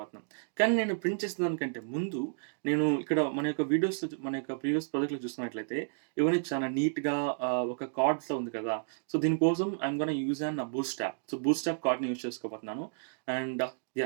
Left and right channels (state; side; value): silent; left; digital silence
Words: కానీ నేను ప్రింట్ చేసిన దానికంటే ముందు నేను ఇక్కడ మన యొక్క వీడియోస్, మన యొక్క ప్రీవియస్ ప్రాజెక్ట్లో చూస్తున్నట్లయితే ఇవన్నీ చాలా నీట్గా ఒక కార్డ్స్లో ఉంది కదా. సో దీనికోసం I'm gonna use an boost app. So boost app కార్డ్ని యూజ్ చేసుకోబోతున్నాను. And